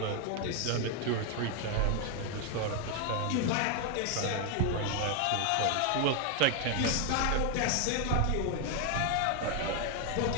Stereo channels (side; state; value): both; different; correlation 0.01